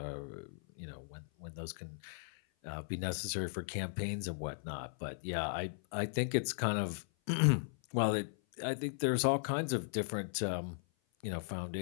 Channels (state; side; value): silent; right; 53 dB below the other